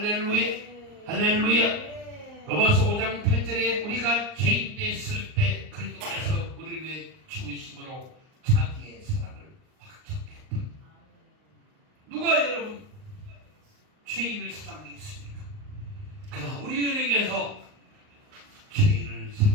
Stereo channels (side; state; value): left; late; 38 ms